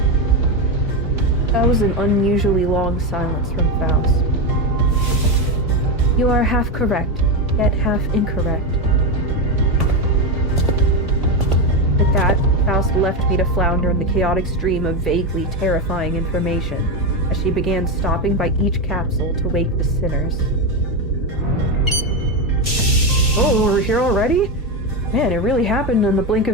That was an unusually long silence from Faust. You are half correct, yet half incorrect. With that, Faust left me to flounder in the chaotic stream of vaguely terrifying information as she began stopping by each capsule to wake the sinners. Oh, we're here already? Man, it really happened in the blink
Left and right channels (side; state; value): both; normal; correlation 0.12